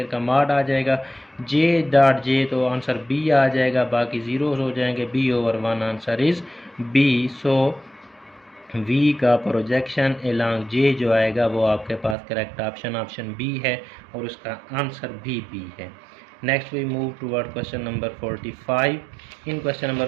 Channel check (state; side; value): drops out; left; at 12.2 s